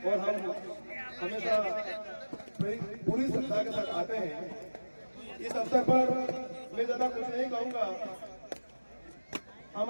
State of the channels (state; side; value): inverted; both; correlation -1.00